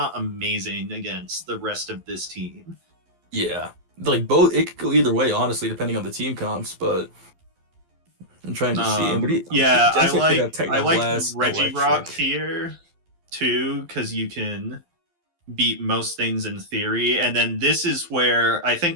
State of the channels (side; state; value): left; late; 12 ms